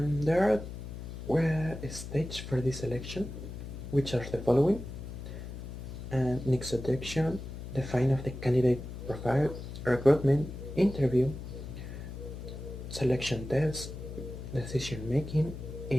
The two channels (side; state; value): left; noise; hum, 9 dB below the sound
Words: there are stages for this selection, which are the following: and introduction, define of the candidate profile, recruitment, interview, selection test, decision making,